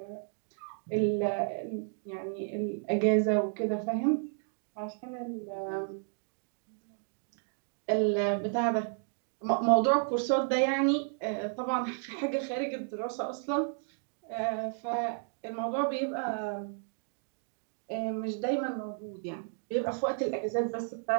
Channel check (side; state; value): left; silent; 56 dB below the other